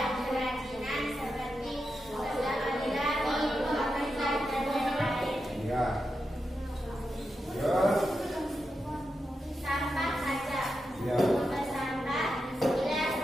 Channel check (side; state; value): both; normal; correlation 0.88